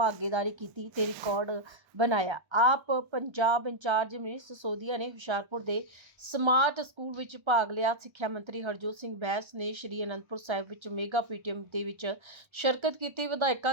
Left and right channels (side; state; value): left; late; 1.3 ms